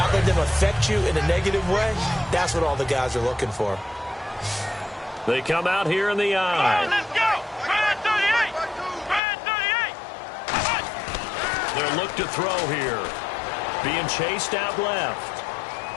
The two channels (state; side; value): drops out; right; at 9.2 s